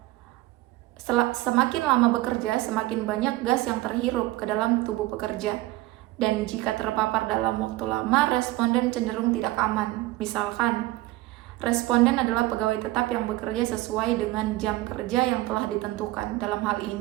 Semakin lama bekerja, semakin banyak gas yang terhirup ke dalam tubuh pekerja. Dan jika terpapar dalam waktu lama, responden cenderung tidak aman. Misalkan, responden adalah pegawai tetap yang bekerja sesuai dengan jam kerja yang telah ditentukan. Dalam hal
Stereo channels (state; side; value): quieter; left; 18.3 dB